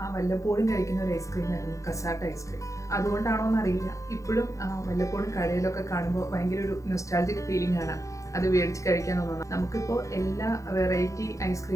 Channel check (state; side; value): late; right; 0.15 ms